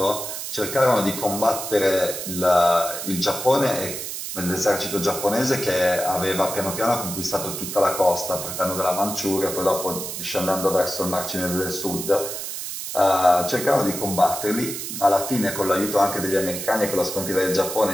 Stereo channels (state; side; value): noise; right; hiss, 6 dB below the sound